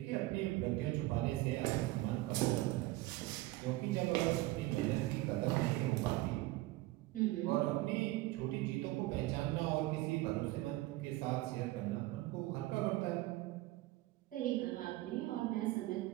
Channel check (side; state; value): left; quieter; 18.6 dB